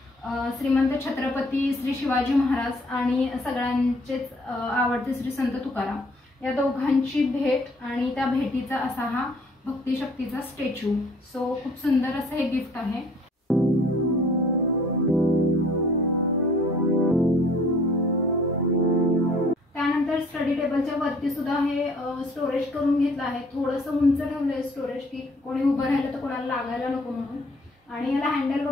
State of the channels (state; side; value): normal; both; correlation 0.57